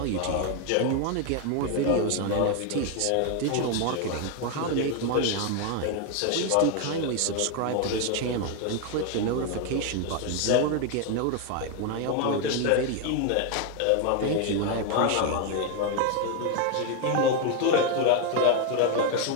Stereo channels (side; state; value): both; different; correlation 0.01